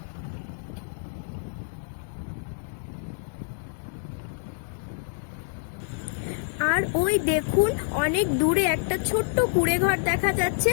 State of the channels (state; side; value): silent; right; digital silence